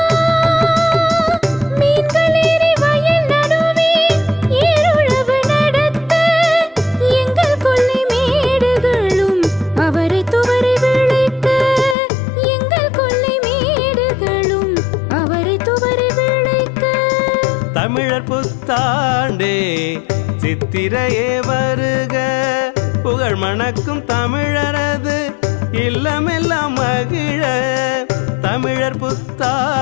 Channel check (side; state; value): right; drops out; at 12.0 s